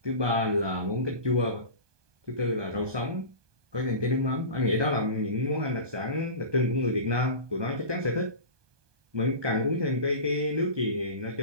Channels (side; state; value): left; late; 1.2 ms